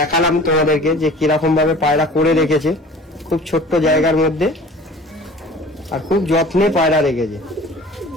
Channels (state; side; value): normal; both; correlation 0.45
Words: তোমাদেরকে যে কিরকম ভাবে পায়রা করে রেখেছে, খুব ছোট্ট জায়গার মধ্যে, আর খুব যত্নে পায়রা রেখেছে।